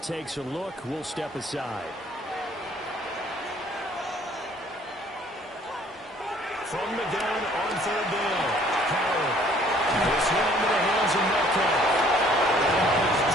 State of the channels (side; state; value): both; normal; correlation 0.58